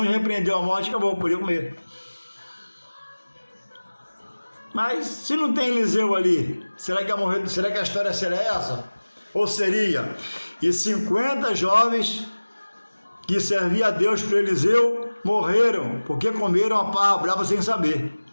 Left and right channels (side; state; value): both; inverted; correlation -1.00